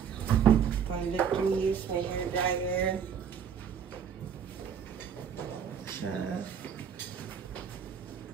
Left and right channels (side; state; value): left; quieter; 7.6 dB